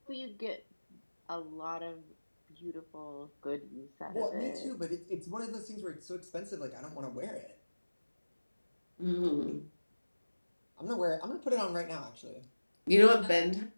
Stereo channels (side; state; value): both; inverted; correlation -1.00